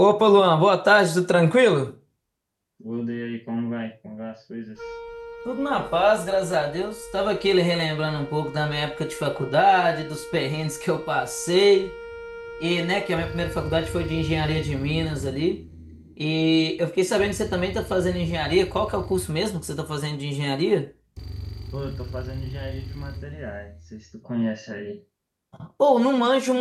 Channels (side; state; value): both; identical; correlation 1.00